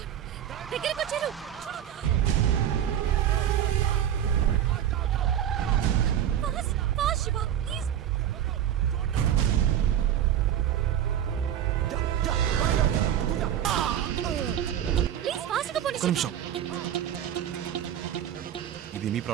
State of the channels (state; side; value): quieter; left; 10.4 dB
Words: దగ్గరికి వచ్చారు. Fast fast Shiva please. Please ఫాస్ట్గా పోనీ. ఒక్క నిమిషం. ఇది మీ